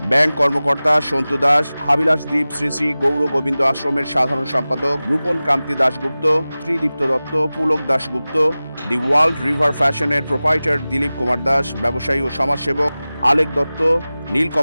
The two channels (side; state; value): both; inverted; correlation -0.97